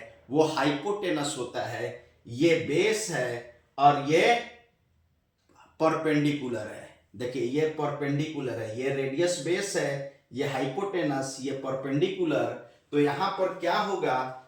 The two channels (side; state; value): both; identical; correlation 1.00